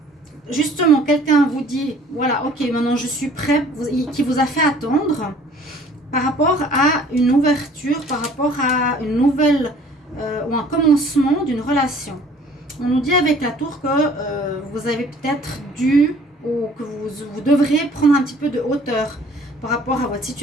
Justement, quelqu'un vous dit, voilà, ok, maintenant je suis prêt, qui vous a fait attendre par rapport à une ouverture, par rapport à une nouvelle ou un commencement d'une relation. On nous dit avec la tour que vous avez peut-être dû ou que vous devrez prendre un petit peu de hauteur par rapport à votre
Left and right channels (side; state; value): both; normal; correlation 0.53